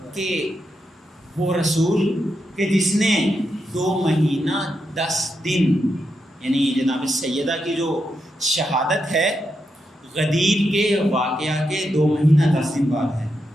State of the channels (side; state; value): both; normal; correlation 0.84